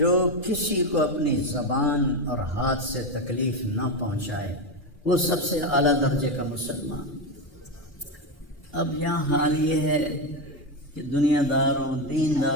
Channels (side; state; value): both; normal; correlation 0.12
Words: کسی کو اپنی زبان اور ہاتھ سے تکلیف نہ پہنچائے وہ سب سے اعلیٰ درجے کا مسلمان. اب یہاں حال یہ ہے کہ دنیا دار ہوں،